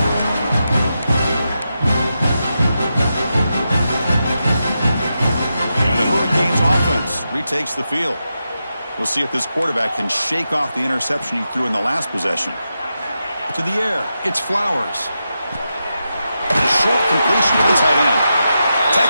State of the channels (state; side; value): inverted; both; correlation -0.88